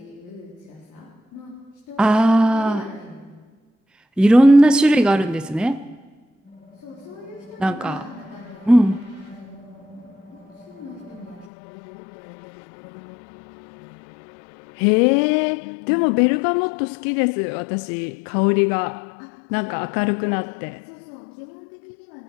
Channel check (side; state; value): right; drops out; at 11.5 s